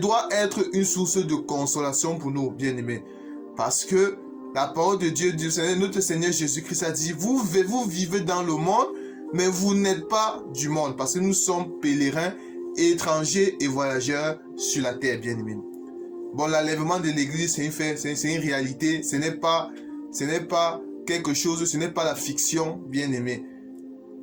être une source de consolation pour nous, bien-aimés. Parce que la parole de Dieu, notre Seigneur Jésus-Christ a dit, vous vivez dans le monde, mais vous n'êtes pas du monde. Parce que nous sommes pèlerins, étrangers et voyageurs sur la terre, bien-aimés. Bon, l'enlèvement de l'Église, c'est un fait, c'est une réalité. Ce n'est pas quelque chose, ce n'est pas la fiction, bien-aimés.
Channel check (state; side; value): identical; both; correlation 1.00